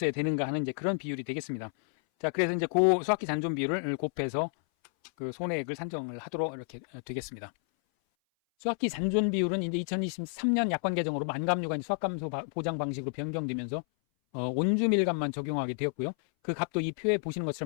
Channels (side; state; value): right; silent; 57 dB below the other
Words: 되는가 하는 이제 그런 비율이 되겠습니다. 자, 그래서 이제 그 수학기 잔존 비율을 곱해서 그 손해액을 산정을 하도록 이렇게 되겠습니다. 수학기 잔존 비율은 이제 2023년 약관 개정으로 만감류가 수학감소 보장 방식으로 변경되면서 온주밀감만 적용하게 되었고요. 그 값도 이 표에 보시는